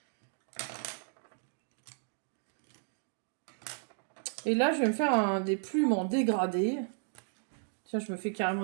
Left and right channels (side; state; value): left; silent; digital silence